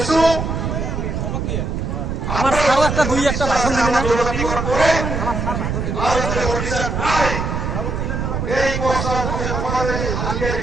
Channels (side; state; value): right; noise; rumble, 2 dB below the sound